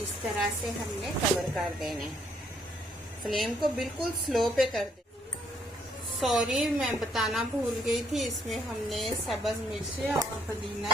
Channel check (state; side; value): normal; both; correlation 0.70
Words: इस तरह से हमने कवर कर देने। फ्लेम को बिल्कुल स्लो पे कर दे। सॉरी, मैं बताना भूल गई थी, इसमें हमने सब्ज़ मिर्ची और पुदीना